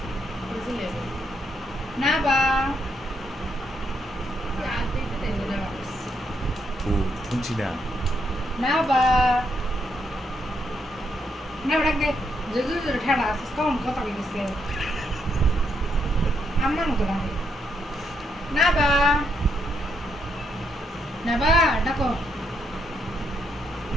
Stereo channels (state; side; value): normal; both; correlation 0.77